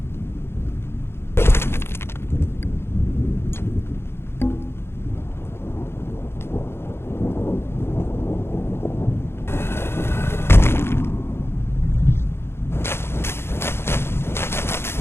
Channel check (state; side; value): late; right; 0.12 ms